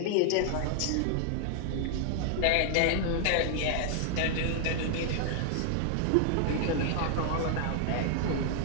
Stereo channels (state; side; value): different; both; correlation 0.00